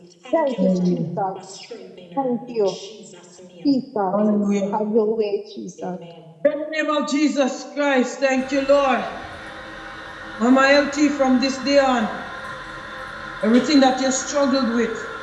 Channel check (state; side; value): identical; both; correlation 1.00